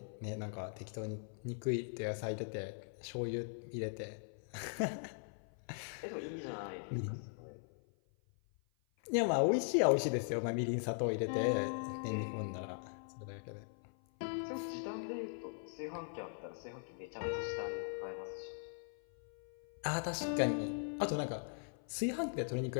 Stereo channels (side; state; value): right; silent; 51 dB below the other